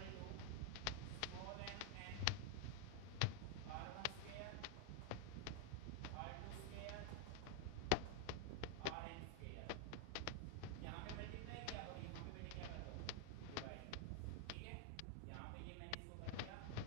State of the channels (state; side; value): different; both; correlation 0.01